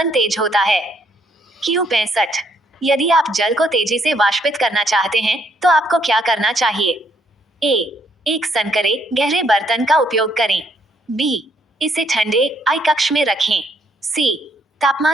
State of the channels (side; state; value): both; normal; correlation 0.69